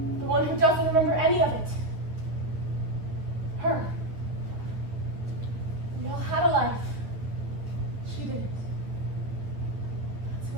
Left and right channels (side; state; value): left; late; 9.7 ms